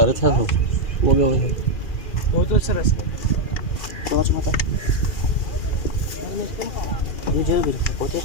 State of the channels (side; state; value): right; late; 2.4 ms